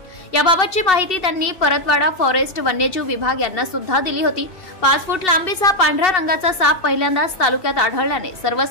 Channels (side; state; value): right; late; 2.7 ms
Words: याबाबतची माहिती त्यांनी परतवाडा फॉरेस्ट वन्यजीव विभाग यांना सुद्धा दिली होती। 5 फूट लांबीचा पांढऱ्या रंगाचा साप पहिल्यांदाच तालुक्यात आढळल्याने सर्व